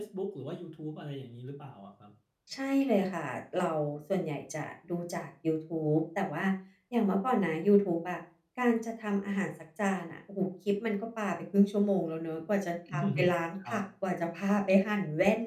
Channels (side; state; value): both; identical; correlation 1.00